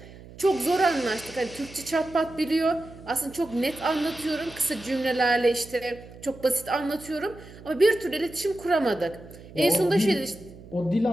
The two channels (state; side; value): noise; right; hum, 18 dB below the sound